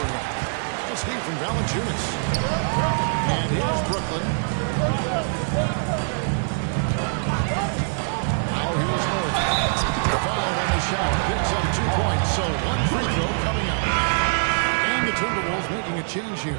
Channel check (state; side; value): silent; left; digital silence